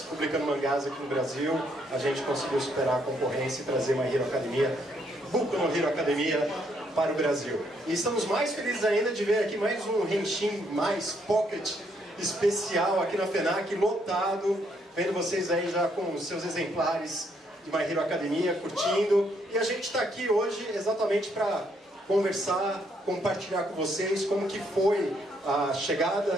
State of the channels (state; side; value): normal; both; correlation 0.72